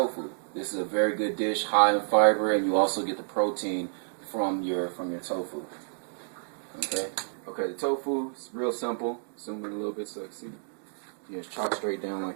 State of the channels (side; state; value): left; silent; digital silence